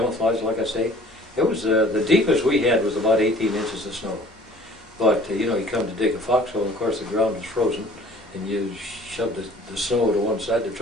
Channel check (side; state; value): both; normal; correlation 0.51